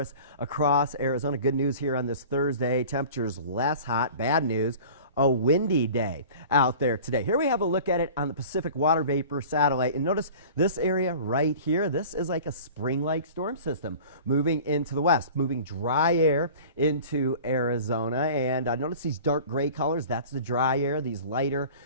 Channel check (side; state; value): both; inverted; correlation -0.41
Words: across Arizona. Good news here on this Thursday. Temperatures less hot. Bad news, a windy day out there today. Here we have a look at it on the Pacific Water Vapor Satellite. And notice this area right here. This is like a spring-like storm system moving into the west, moving dry air into Arizona. And notice these dark gray colors. That's the dry air. These lighter